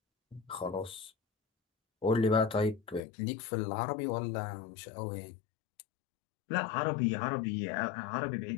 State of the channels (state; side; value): drops out; right; at 3.0 s